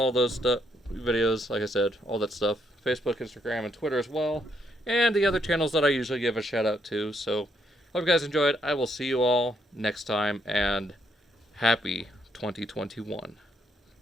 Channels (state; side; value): normal; both; correlation 0.74